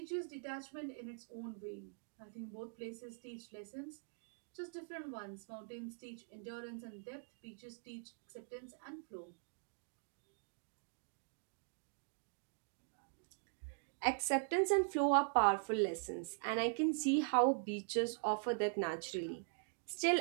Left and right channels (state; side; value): silent; left; digital silence